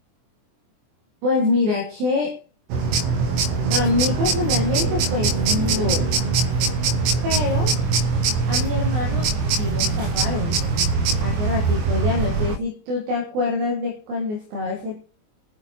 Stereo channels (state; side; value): late; left; 24 ms